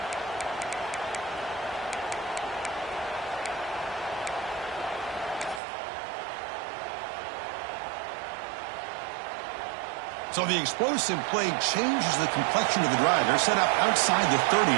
So the explosive play changes the complexion of the drive. They're set up outside the 30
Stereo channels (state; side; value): drops out; left; at 5.6 s